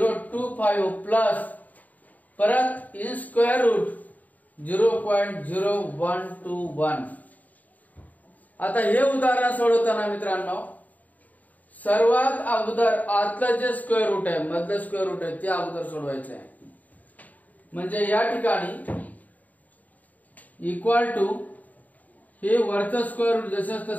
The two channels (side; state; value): right; late; 0.076 ms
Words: प्लस परत इन स्क्वेअर रूट 0.0121. आता हे उदाहरण सोडवताना मित्रांनो, सर्वात अगोदर आतलं जे स्क्वेअर रूट आहे, मधलं स्क्वेअर रूट आहे, ते अगोदर सोडवायचं आहे. म्हणजे या ठिकाणी इक्वल टू हे वरचं स्क्वेअर रूट जसं